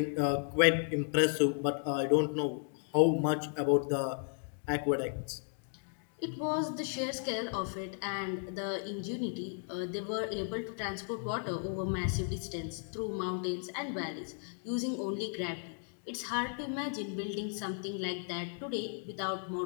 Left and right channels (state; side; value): silent; right; 55 dB below the other